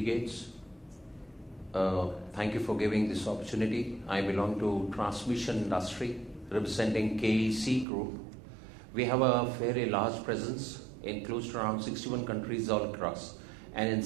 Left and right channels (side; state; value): left; drops out; at 7.9 s